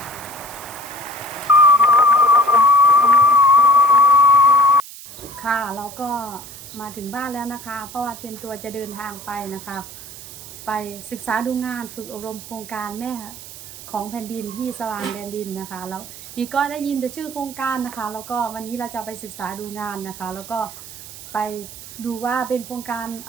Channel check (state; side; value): noise; right; hiss, 15 dB below the sound